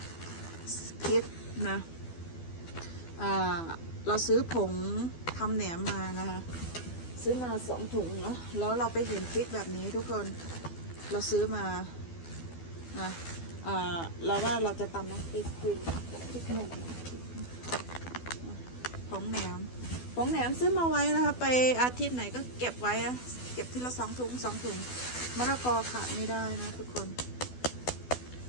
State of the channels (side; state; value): right; late; 12 ms